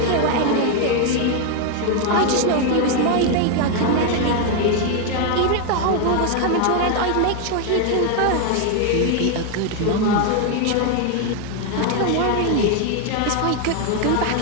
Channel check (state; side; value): different; both; correlation 0.01